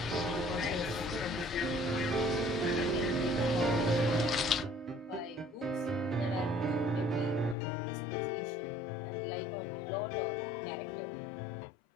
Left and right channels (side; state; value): right; drops out; at 7.6 s